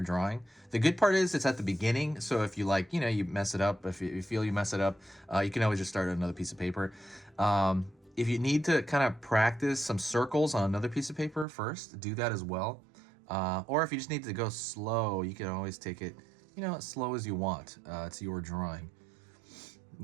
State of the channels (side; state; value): left; drops out; at 11.5 s